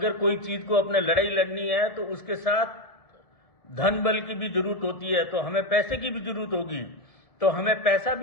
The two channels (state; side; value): late; right; 1.7 ms